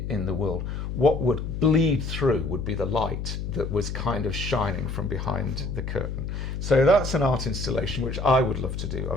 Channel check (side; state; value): left; noise; hum, 4 dB below the sound